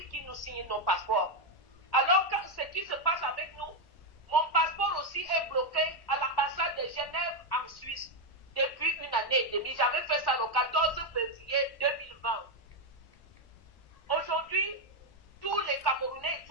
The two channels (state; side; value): late; right; 1.1 ms